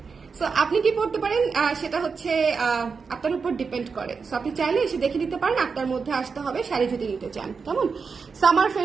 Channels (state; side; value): quieter; left; 5.3 dB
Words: সো আপনি কি পড়তে পারেন সেটা হচ্ছে আপনার উপর ডিপেন্ড করে। সো আপনি চাইলে এসে দেখে নিতে পারেন, আপনার মধ্যে আসতে হবে শাড়ি যদি নিতে চান। কেমন সামার